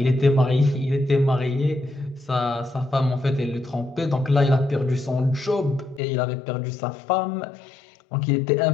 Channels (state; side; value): drops out; right; at 6.0 s